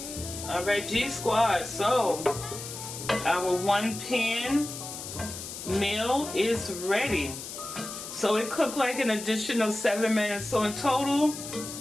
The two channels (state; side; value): noise; left; hiss, 9 dB below the sound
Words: All right, G Squad. So our 1-pan meal is ready. So it cooked like an additional 7 minutes. So in total,